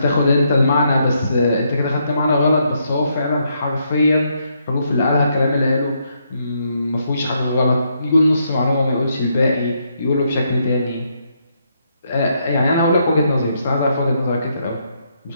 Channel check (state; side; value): inverted; both; correlation -0.76